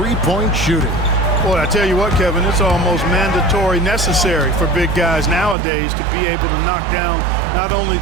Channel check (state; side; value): drops out; left; at 5.6 s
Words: shooting. Boy, I tell you what, Kevin, it's almost mandatory necessary for big guys nowadays to be able to knock down not only